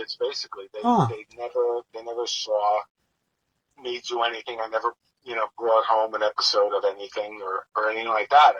basically. They never saw me do anything. I never, you know, brought home an episode of anything or anything like that.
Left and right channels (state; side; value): identical; both; correlation 1.00